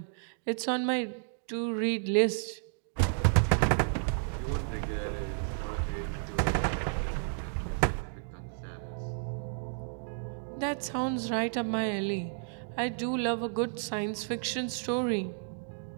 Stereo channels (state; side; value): silent; left; digital silence